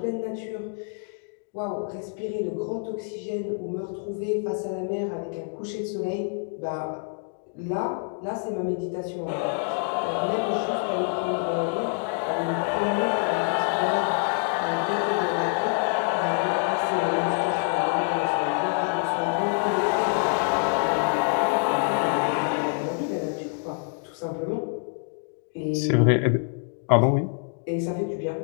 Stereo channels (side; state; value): right; quieter; 39.0 dB